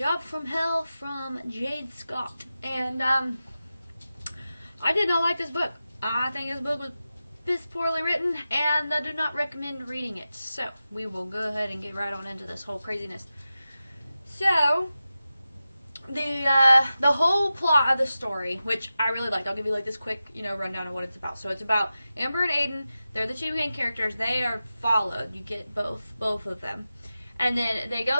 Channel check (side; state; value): both; inverted; correlation -0.93